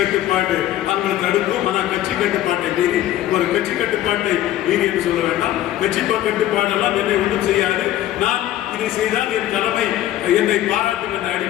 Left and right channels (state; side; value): quieter; right; 13.3 dB